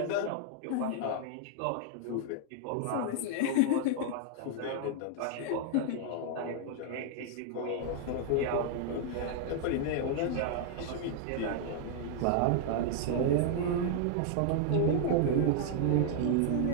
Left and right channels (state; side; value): different; both; correlation 0.00